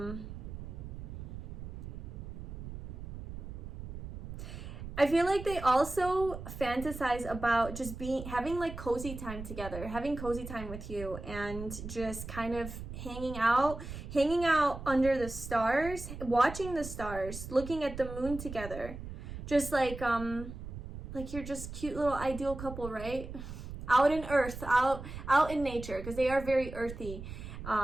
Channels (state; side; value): noise; right; rumble, 10 dB below the sound